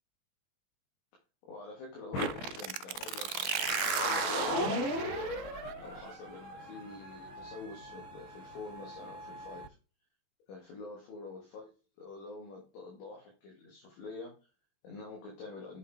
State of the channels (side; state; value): right; late; 21 ms